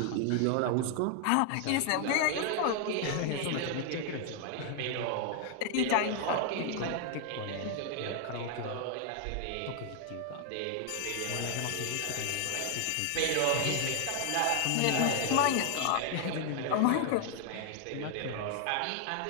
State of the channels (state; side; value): different; both; correlation 0.00